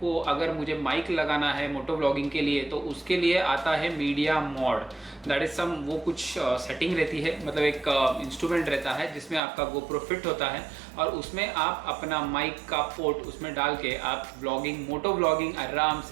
अगर मुझे माइक लगाना है मोटो ब्लॉगिंग के लिए तो उसके लिए आता है media mode. That is some वो कुछ सेटिंग रहती है, मतलब एक इंस्ट्रूमेंट रहता है जिसमें आपका GoPro फिट होता है और उसमें आप अपना माइक का पोर्ट उसमें डाल के आप ब्लॉगिंग मोटो ब्लॉगिंग आराम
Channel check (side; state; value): left; drops out; at 9.4 s